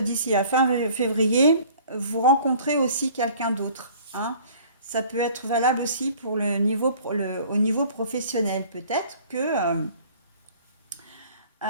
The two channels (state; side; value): inverted; both; correlation -0.51